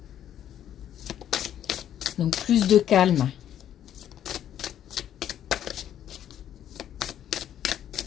Donc plus de calme.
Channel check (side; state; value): right; quieter; 10.6 dB